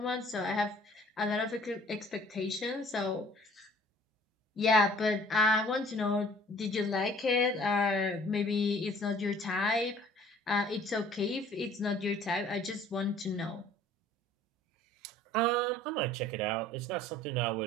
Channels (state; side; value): normal; both; correlation 0.53